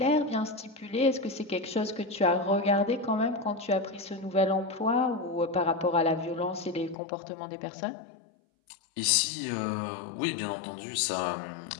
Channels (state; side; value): drops out; right; at 7.0 s